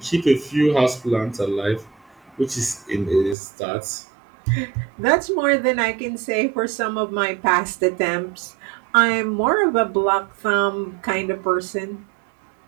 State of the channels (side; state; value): left; drops out; at 3.4 s